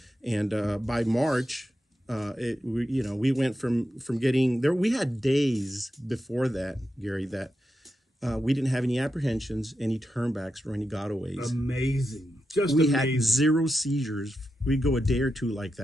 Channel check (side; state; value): both; normal; correlation 0.87